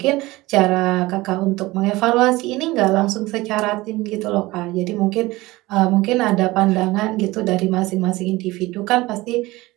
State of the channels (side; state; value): left; quieter; 19.9 dB